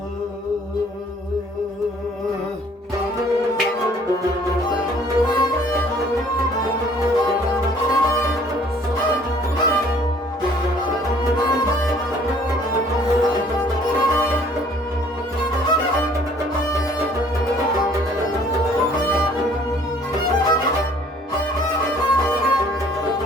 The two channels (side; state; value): both; normal; correlation 0.56